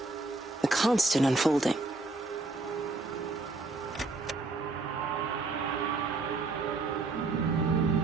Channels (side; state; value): left; quieter; 3.5 dB